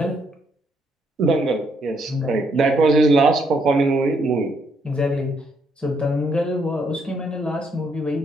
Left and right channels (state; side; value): normal; both; correlation 0.73